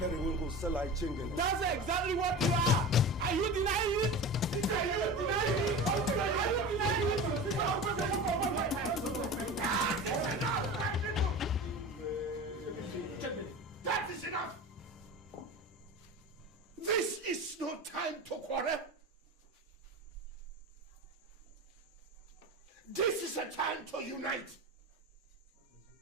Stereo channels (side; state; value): both; normal; correlation 0.31